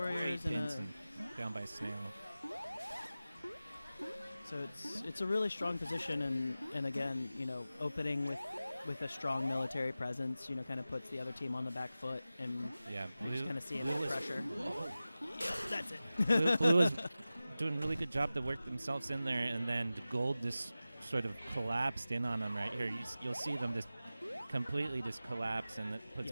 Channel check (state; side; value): inverted; both; correlation -0.95